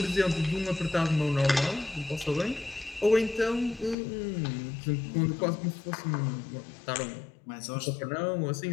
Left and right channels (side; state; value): right; drops out; at 4.0 s